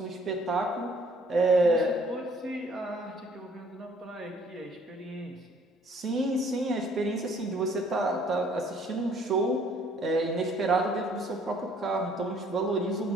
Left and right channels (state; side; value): normal; both; correlation 0.60